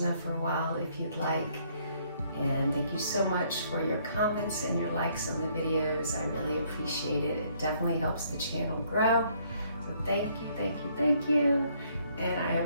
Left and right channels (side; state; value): both; inverted; correlation -0.66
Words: for a while if you'd like. And thank you so much for your comments and your likes on the videos. I really appreciate it. It definitely helps the channel grow. So thank you, thank you, thank you. And I